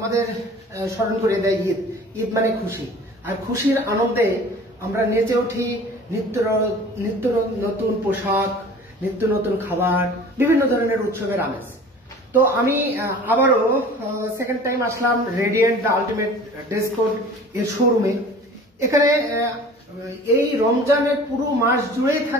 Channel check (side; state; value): both; normal; correlation 0.44